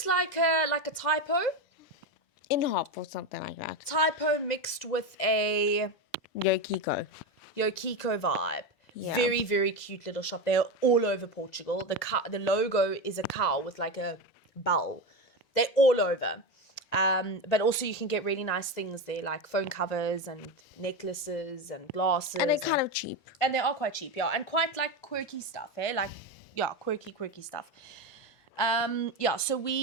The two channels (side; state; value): both; normal; correlation 0.16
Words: like a typo. In hop or something like that. Typo mixed with a Yokiko Yokiko vibe. Yeah. Very, very cute little shop. They're all over Portugal. The logo is a cow with like a bell. They're all over. But also you can get really nice things there, like phone covers and necklaces and glasses. And they're kind of cheap. And they are quite cheap, yeah. And quite like quirky stuff, eh? Like, yeah, quirky stuff. So